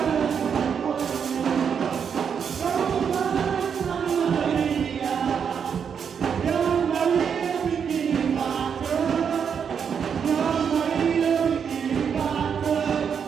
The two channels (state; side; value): quieter; left; 7.1 dB